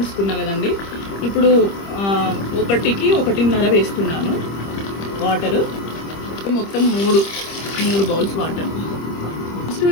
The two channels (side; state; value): right; late; 25 ms